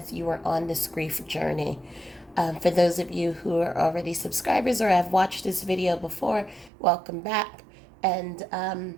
you are on this grief journey. For those of you who are already subscribers or have watched this video before, welcome back. And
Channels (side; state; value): left; drops out; at 6.7 s